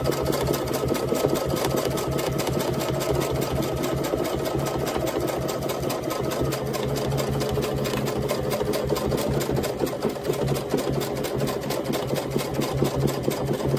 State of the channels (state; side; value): identical; both; correlation 1.00